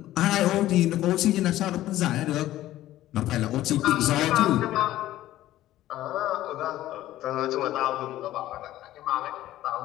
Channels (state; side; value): quieter; right; 14.6 dB